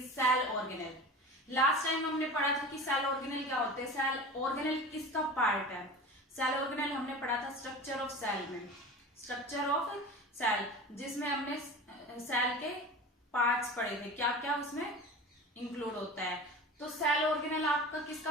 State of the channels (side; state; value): both; normal; correlation 0.34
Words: cell organelle. Last time हमने पढ़ा था कि cell organelle क्या होते हैं, सेल ऑर्गेनेल किसका पार्ट है। सेल ऑर्गेनेल हमने पढ़ा था स्ट्रक्चर ऑफ सेल में, स्ट्रक्चर ऑफ सेल जिसमें हमने सेल के पार्ट्स पढ़े थे, क्या क्या उसमें इंक्लूड होता है। तो सेल ऑर्गेनेल आपका